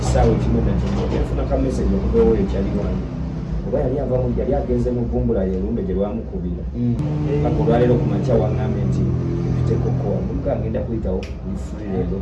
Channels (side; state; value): both; identical; correlation 1.00